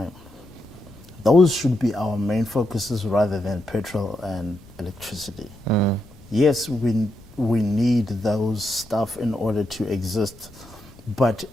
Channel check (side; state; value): left; noise; rumble, 25 dB below the sound